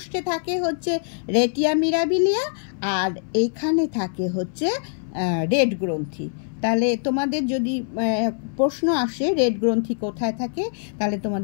থাকে হচ্ছে রেটিয়া মিরাবিলিয়া, আর এখানে থাকে হচ্ছে রেড গ্রন্থি। তাহলে তোমাদের যদি প্রশ্ন আসে রেড গ্রন্থি কোথায় থাকে, তাহলে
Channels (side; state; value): right; silent; 63 dB below the other